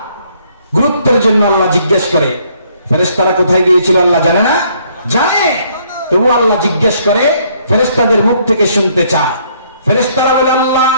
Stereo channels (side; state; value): both; inverted; correlation -0.66